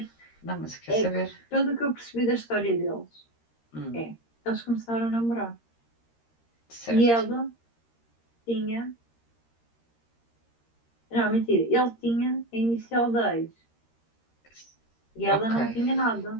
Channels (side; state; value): right; late; 13 ms